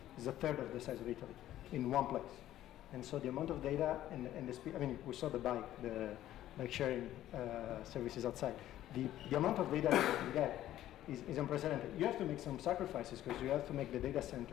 it's a third of the size of Italy in one place. And so the amount of data and the speed, I mean, we saw the bike, like sharing services outside. The amount of data that you can get is unprecedented. You have to make some sacrifices because you have to make the data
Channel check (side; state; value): right; quieter; 13.2 dB